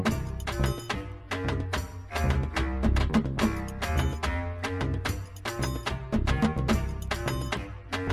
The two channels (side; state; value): both; identical; correlation 1.00